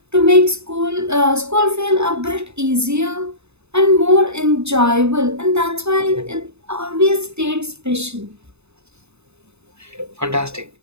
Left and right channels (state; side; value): late; left; 0.81 ms